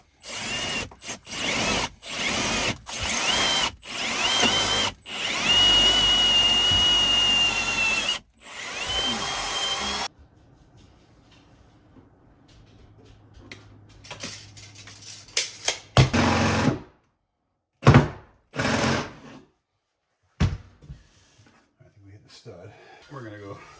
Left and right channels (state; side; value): identical; both; correlation 1.00